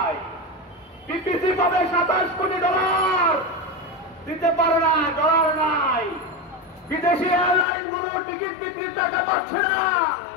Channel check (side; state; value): right; drops out; at 7.7 s